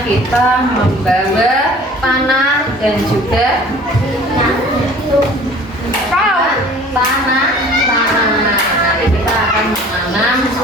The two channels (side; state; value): both; normal; correlation 0.48